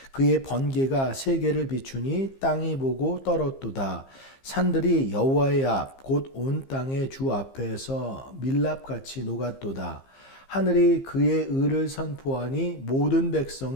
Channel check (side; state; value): right; late; 15 ms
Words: 그의 번개가 세계를 비추니 땅이 보고 떨었도다. 산들이 여호와의 앞 곧 온 땅의 주 앞에서 밀랍같이 녹았도다. 하늘이 그의 의를 선포하니 모든